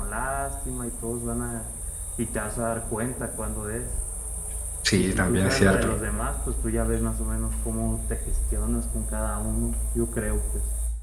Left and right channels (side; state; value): both; identical; correlation 1.00